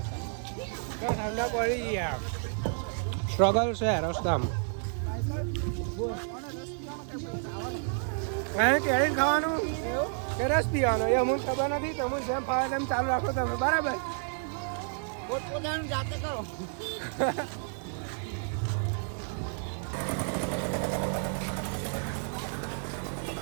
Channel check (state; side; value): silent; left; 57 dB below the other